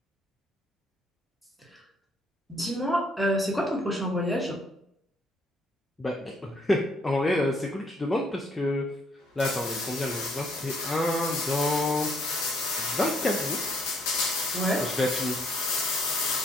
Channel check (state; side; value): normal; both; correlation 0.67